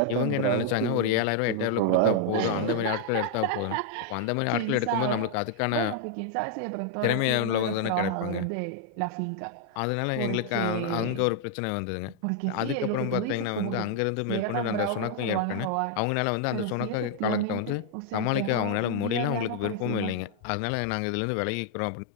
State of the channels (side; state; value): both; different; correlation -0.01